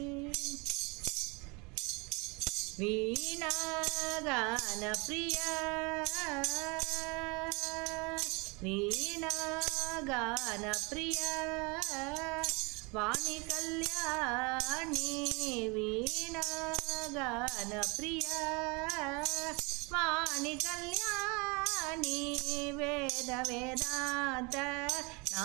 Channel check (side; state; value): left; quieter; 28.8 dB